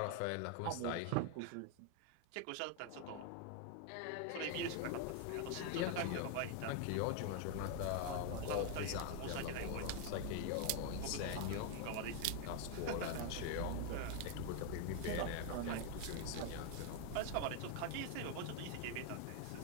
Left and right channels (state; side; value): different; both; correlation 0.01